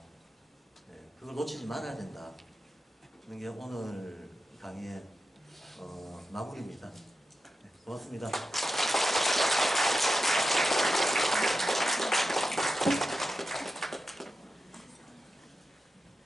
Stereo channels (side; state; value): both; normal; correlation 0.91